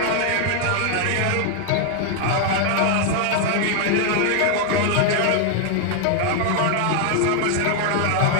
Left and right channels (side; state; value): both; different; correlation 0.00